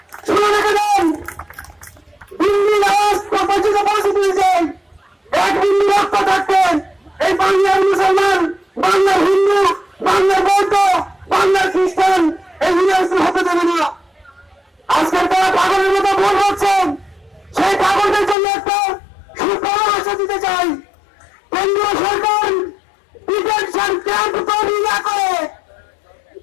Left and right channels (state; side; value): drops out; right; at 18.4 s